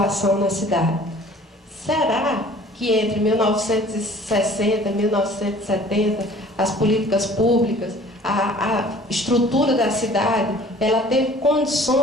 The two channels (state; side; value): normal; both; correlation 0.50